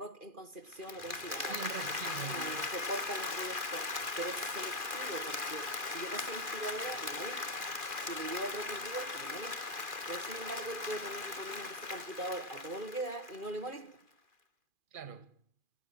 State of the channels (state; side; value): late; left; 2.4 ms